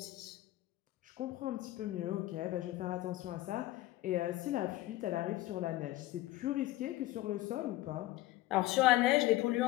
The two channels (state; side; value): quieter; right; 16.7 dB